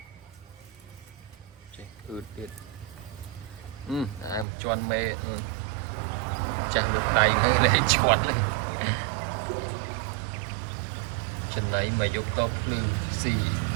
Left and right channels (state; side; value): drops out; left; at 4.5 s